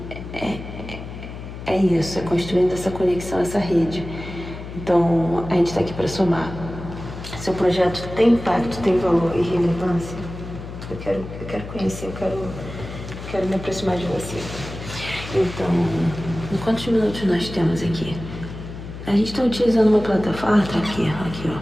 é isso, é construindo essa conexão, essa rede. Então, a gente está aqui para somar. Seu projeto tem impacto, tem valor e relevância? Eu quero conhecer, eu quero me aproximar de você. Então, em quantos minutos nós temos aqui? A gente está utilizando uma plataforma, tá aqui, ó.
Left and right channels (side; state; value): left; noise; hum, 11 dB below the sound